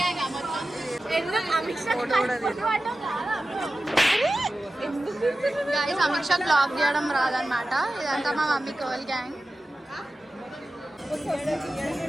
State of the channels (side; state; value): both; normal; correlation 0.94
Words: guys. Amit Shah blog చేయడం రాదనమాట. ఇదంతా మా mummy girl gang.